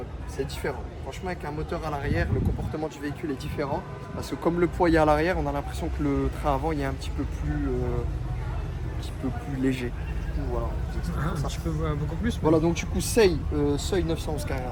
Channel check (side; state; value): both; identical; correlation 1.00